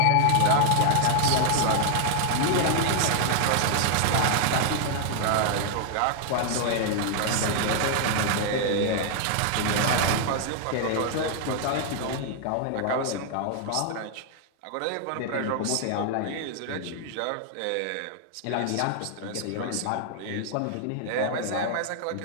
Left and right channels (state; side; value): different; both; correlation 0.00